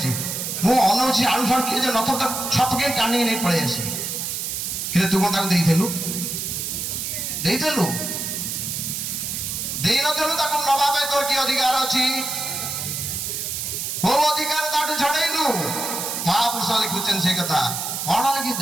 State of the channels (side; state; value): right; noise; hiss, 3 dB below the sound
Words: ମୁଁ ଅନଉଛି ଆଳୁ ସାଳୁ କିଏ ଯେ ନଥିବ ତାକୁ ଛପକେଇ ଟାଣିକି ନେଇ ପଳେଇ ଆସି। କିନ୍ତୁ ତୁ କ'ଣ ତାକୁ ଦେଇଥିଲୁ? ଦେଇଥିଲୁ? ଦେଇନଥିଲୁ ତାକୁ ନବା ପାଇଁ ତୋର କି ଅଧିକାର ଅଛି? କୋଉ ଅଧିକାର ତାଠୁ ଛଡ଼େଇଲୁ? ମହାପୁରୁଷ ଲେଖୁଛନ୍ତି ସେ କଥା। କ'ଣ